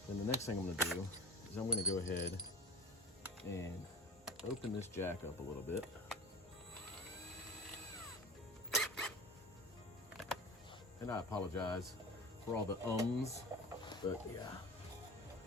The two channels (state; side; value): normal; both; correlation 0.32